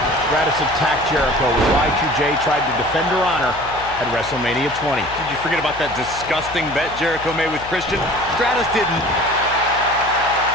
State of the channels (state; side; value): noise; left; hum, 16 dB below the sound